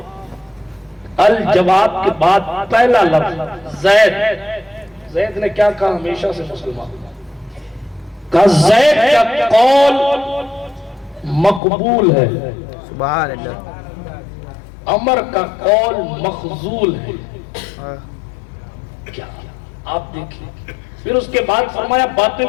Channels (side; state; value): right; drops out; at 11.6 s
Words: کے بعد پہلا لفظ زید نے کیا کہا؟ ہمیشہ سے مسلمان کہا۔ زید کا قول مقبول ہے، سبحان اللہ، عمر کا قول مخذول ہے۔ کیا آپ دیکھیں، پھر اس کے بعد فرمایا باتیں